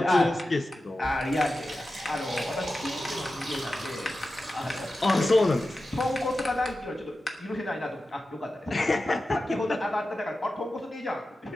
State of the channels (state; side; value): normal; both; correlation 0.93